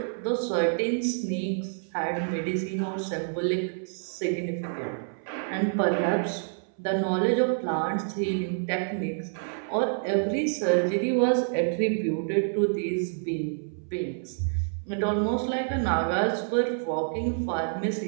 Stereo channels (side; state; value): left; silent; 60 dB below the other